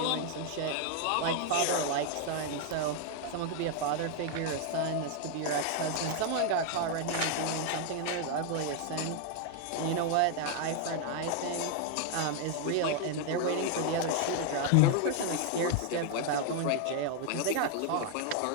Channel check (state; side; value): different; both; correlation 0.01